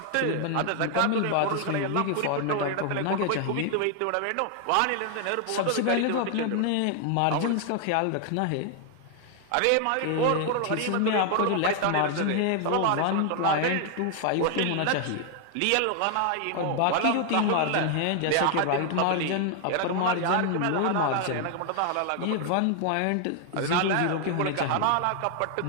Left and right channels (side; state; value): both; different; correlation 0.00